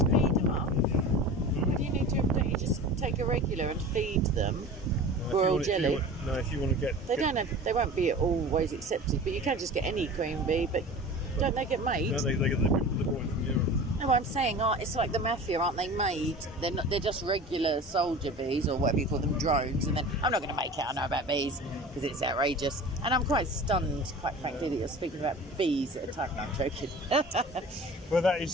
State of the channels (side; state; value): both; normal; correlation 0.37